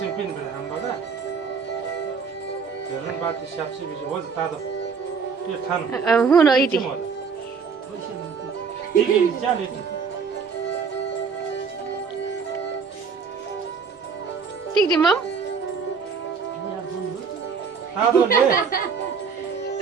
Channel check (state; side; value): quieter; left; 5.8 dB